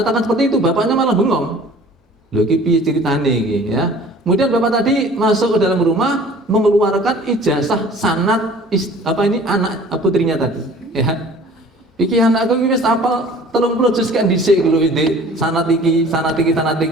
seperti itu, bapaknya malah bengong. Loh, iki piye ceritane iki, ya. Kemudian bapak tadi masuk ke dalam rumah mengeluarkan ijazah sanad anak putrinya tadi, ya. Iki anakku iki wis hafal 30 juz kan dhisik lho iki, sanad iki,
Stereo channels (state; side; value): normal; both; correlation 0.48